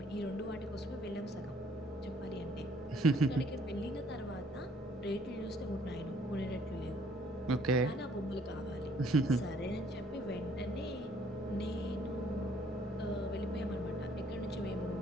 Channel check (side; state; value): both; normal; correlation 0.62